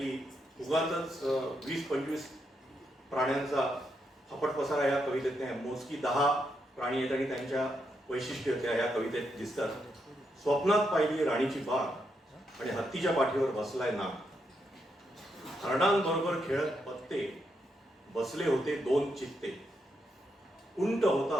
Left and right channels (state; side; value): normal; both; correlation 0.81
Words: उगाचच 20-25 प्राण्यांचा फपट पसारा या कवितेत नाही. मोजकी 10 प्राणी आहेत आणि त्यांच्या वैशिष्ट्य त्या ह्या कवितेत दिसतात. स्वप्नात पाहिली राणीची बाग आणि हत्तीच्या पाठीवर बसलाय नाग. हरणांबरोबर खेळत पत्ते बसले होते 2 चित्ते. उंट